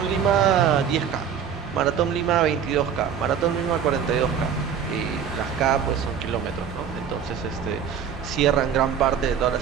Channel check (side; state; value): left; quieter; 7.8 dB